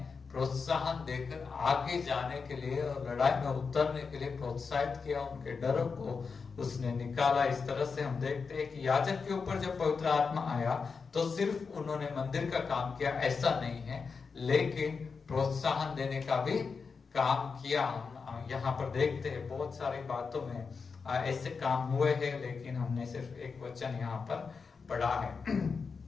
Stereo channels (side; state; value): right; quieter; 5.1 dB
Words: प्रोत्साहन देकर आगे जाने के लिए और लड़ाई में उतरने के लिए प्रोत्साहित किया, उनके डरों को उसने निकाला। इस तरह से हम देखते हैं कि याजक के ऊपर जब पवित्र आत्मा आया तो सिर्फ उन्होंने मंदिर का काम किया ऐसा नहीं है, लेकिन प्रोत्साहन देने का भी काम किया। हम यहाँ पर देखते हैं बहुत सारी बातों में ऐसे काम हुए हैं, लेकिन हमने सिर्फ एक वचन यहाँ पर पढ़ा है।